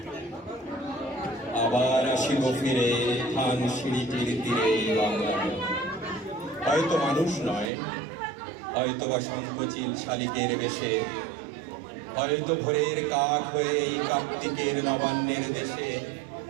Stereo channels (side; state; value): left; drops out; at 7.7 s